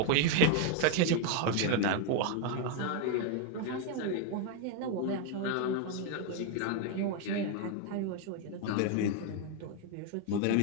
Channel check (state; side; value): different; both; correlation 0.01